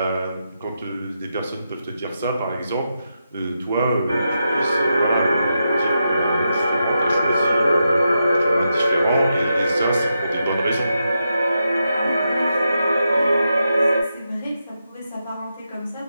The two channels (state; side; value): inverted; both; correlation -0.86